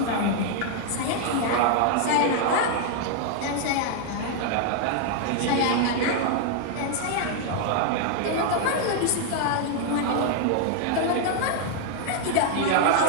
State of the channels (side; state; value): both; different; correlation 0.00